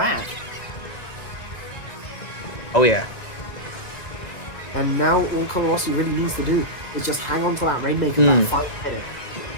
Oh yeah. And now all couleurs really needs to do is just hang on to that Rainmaker that 5 minute.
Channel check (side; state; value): right; late; 1.9 ms